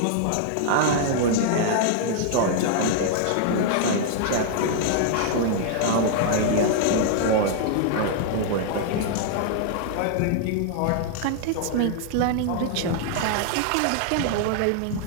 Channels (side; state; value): both; different; correlation 0.00